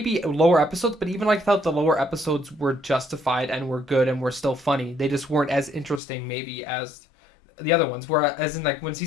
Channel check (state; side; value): drops out; right; at 6.0 s